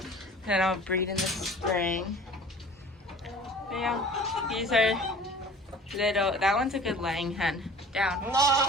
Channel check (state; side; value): normal; both; correlation 0.45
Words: that I'll breed in the spring. But yeah, these are little, that one's a good laying hen. Down.